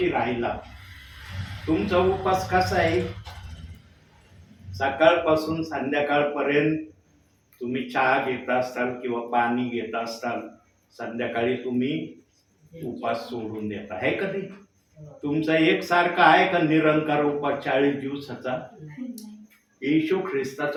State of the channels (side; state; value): both; identical; correlation 1.00